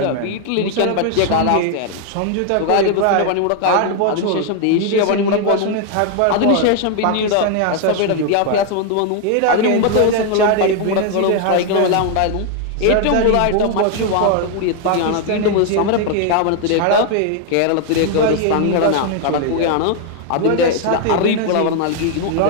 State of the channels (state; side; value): different; both; correlation 0.00